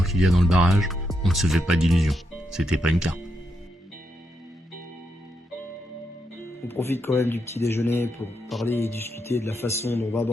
qu'il y a dans le barrage, on ne se fait pas d'illusions. C'était pas une carpe. On profite quand même du petit déjeuner pour parler et discuter de la façon dont on va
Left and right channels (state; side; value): normal; both; correlation 0.82